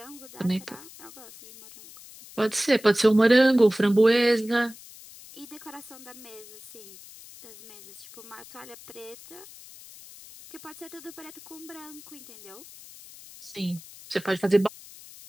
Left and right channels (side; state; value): left; noise; hiss, 19 dB below the sound